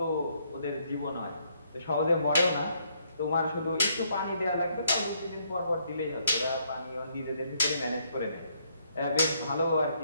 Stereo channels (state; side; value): inverted; both; correlation -0.71